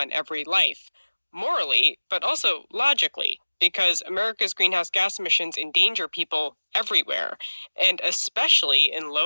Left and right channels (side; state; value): both; inverted; correlation -1.00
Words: every life, morally, but also logically, because America's greenhouse gas emissions endanger people everywhere, and especially in